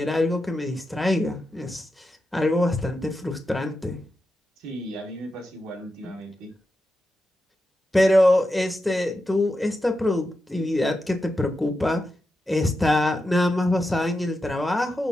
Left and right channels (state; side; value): normal; both; correlation 0.89